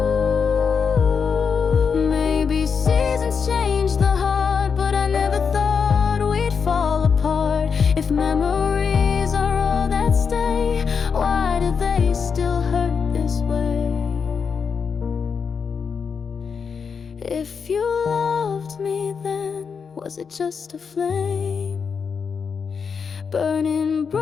Maybe seasons change the heart, but I never thought we'd fall apart. If memories are all that stay, why do they still hurt this way? If you loved me then, was it just a flame, burning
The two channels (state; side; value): quieter; right; 6.0 dB